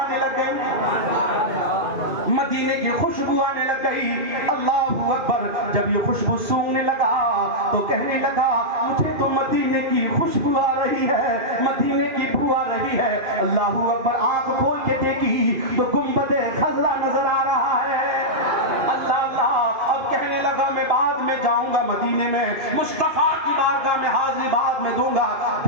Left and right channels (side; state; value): left; late; 2.5 ms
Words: لگ گئی، مدینے کی خوشبو آنے لگ گئی. اللہ اکبر. جب یہ خوشبو سونگنے لگا تو کہنے لگا مجھے تو مدینے کی خوشبو آ رہی ہے، مدینے کی بو آ رہی ہے. اللہ اکبر. آنکھ کھول کے دیکھی تو گنبد خضرا نظر آ رہا ہے. اللہ اللہ. اب کہنے لگا میں بعد میں جاؤں گا مدینے میں، مصطفیٰ کی بارگاہ میں حاضری بعد میں دوں گا.